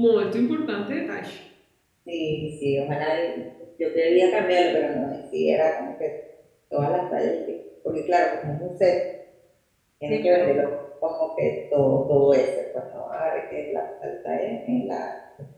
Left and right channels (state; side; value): identical; both; correlation 1.00